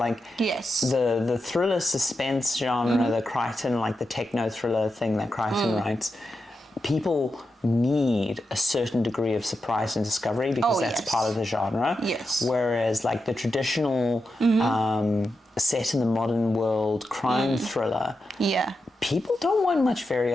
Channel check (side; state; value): both; normal; correlation 0.88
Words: the thriller suspense genre, the Crichton, like the techno thriller thing that Crichton writes, people need a certain degree of surprise and discovery because that's part of the genre. Yes. Whereas like the traditional set in the modern world crime thriller, people don't want much